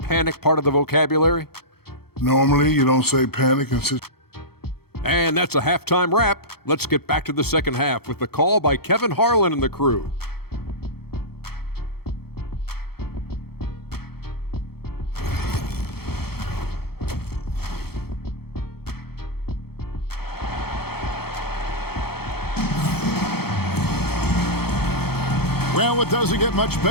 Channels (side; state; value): right; late; 0.96 ms